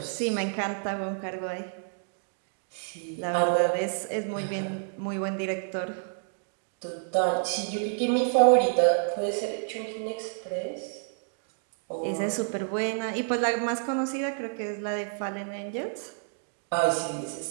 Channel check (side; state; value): left; silent; digital silence